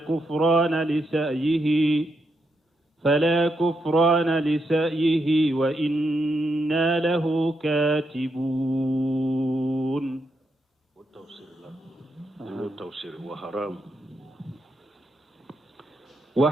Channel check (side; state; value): both; normal; correlation 0.82